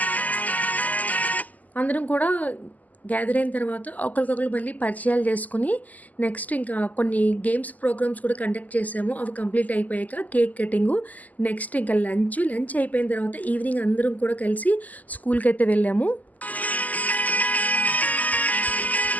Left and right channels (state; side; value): late; right; 0.079 ms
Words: అందరం కూడా గ్యాదర్ అయిన తర్వాత ఒకరికొకరు మళ్ళీ పరిచయాలు చేసుకుని నెక్స్ట్ ఇంకా కొన్ని గేమ్స్ ప్రోగ్రామ్స్ కూడా కండక్ట్ చేసాము. అవి కంప్లీట్ అయిపోయాక కేక్ కటింగు, నెక్స్ట్ ఇంకా లంచ్ అయిపోయిన తర్వాత ఈవినింగ్ అందరం కూడా కలిసి స్కూల్కి అయితే వెళ్ళాము.